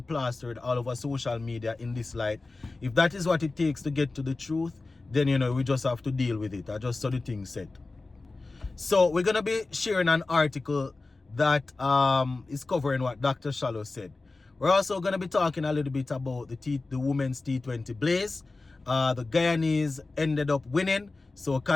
plastered all over social media in this light, if that is what it takes to get to the truth, then, you know, we just have to deal with it. I just saw the thing said. So we're going to be sharing an article that is covering what Dr. Shallow said. We're also going to be talking a little bit about the women's T20 Blaze. The Guyanese ended up winning, so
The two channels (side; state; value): right; quieter; 3.4 dB